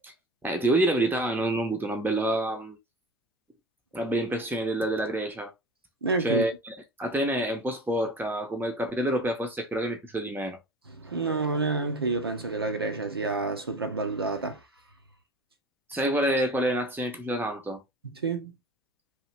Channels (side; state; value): both; normal; correlation 0.37